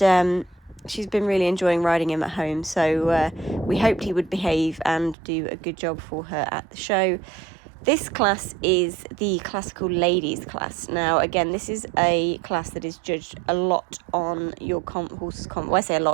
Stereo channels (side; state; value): left; drops out; at 5.2 s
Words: she's been really enjoying riding him at home, so we hoped he would behave and do a good job for her at the show. This class is the classical ladies class. Now, again, this is a class that is judged a lot on your horse's well, I say a